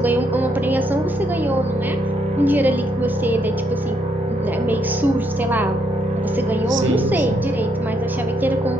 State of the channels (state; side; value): normal; both; correlation 0.74